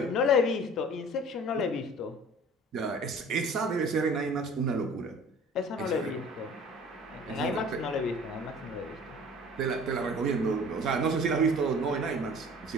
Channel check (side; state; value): both; normal; correlation 0.46